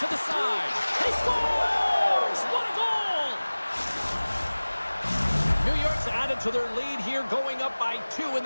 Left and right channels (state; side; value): inverted; both; correlation -1.00